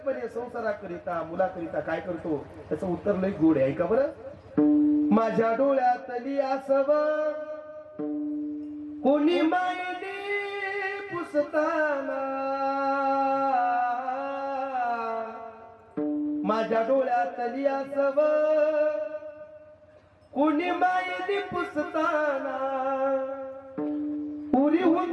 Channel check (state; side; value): identical; both; correlation 1.00